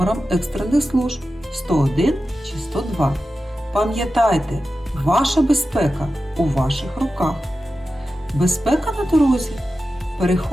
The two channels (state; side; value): normal; both; correlation 0.93